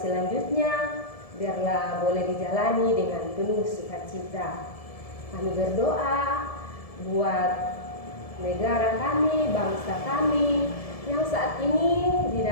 biarlah boleh dijalani dengan penuh sukacita. Kami berdoa buat negara kami, bangsa kami yang saat ini di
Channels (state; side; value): late; right; 1.7 ms